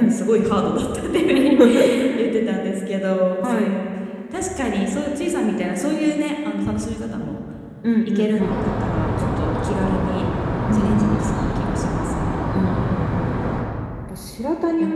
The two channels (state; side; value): identical; both; correlation 1.00